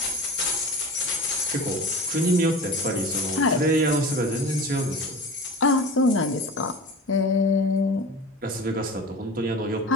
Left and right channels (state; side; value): normal; both; correlation 0.35